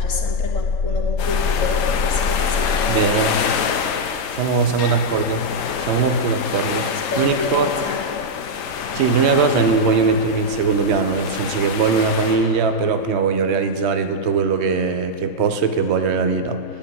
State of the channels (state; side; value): late; right; 4.3 ms